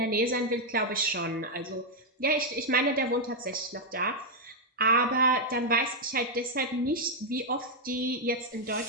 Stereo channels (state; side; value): normal; both; correlation -0.01